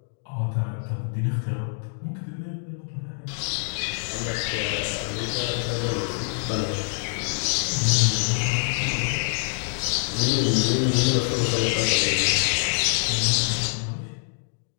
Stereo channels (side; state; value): right; silent; digital silence